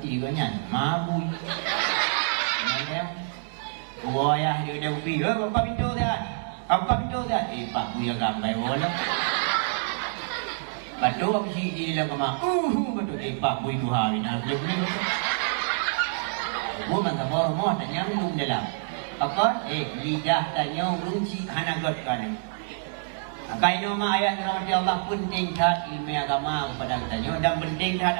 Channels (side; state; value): left; silent; digital silence